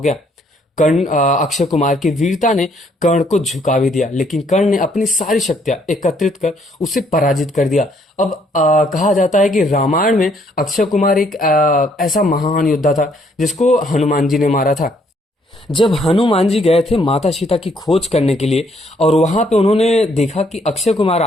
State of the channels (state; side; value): normal; both; correlation 0.68